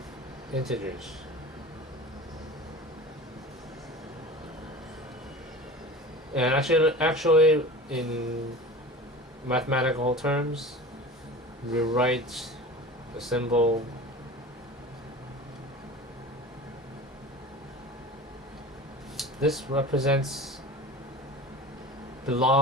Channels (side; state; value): both; normal; correlation 0.36